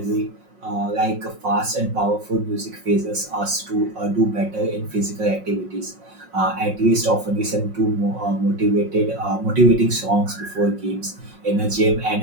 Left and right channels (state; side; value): late; left; 5.5 ms